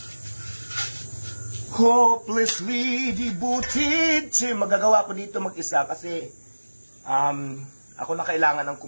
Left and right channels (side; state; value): both; inverted; correlation -1.00